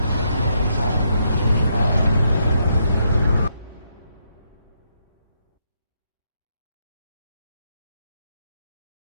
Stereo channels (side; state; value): both; inverted; correlation -0.77